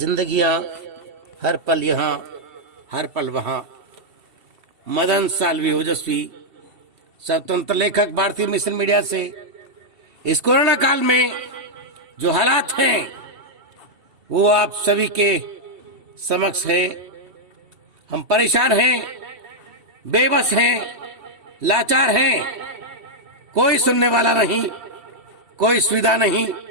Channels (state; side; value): late; left; 2.7 ms